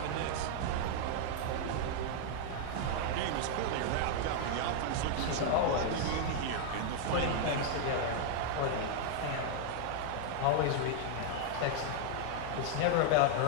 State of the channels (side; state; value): both; different; correlation 0.00